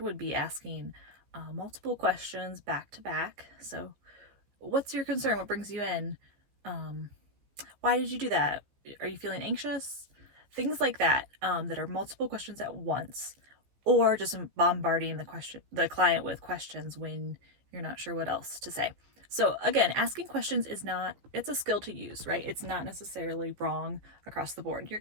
be asking multiple questions back to back. So what's your concern? What brings you in? Why did you do that? Are you feeling anxious? Things like that, that are multiple questions at once, or just bombarding the client with questions when you're not sure what else to say. So again, asking questions it's a skill to use, right? It's not necessarily wrong across the board. You're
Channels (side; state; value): left; late; 15 ms